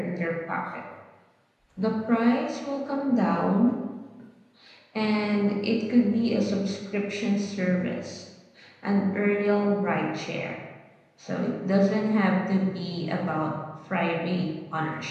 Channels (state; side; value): identical; both; correlation 1.00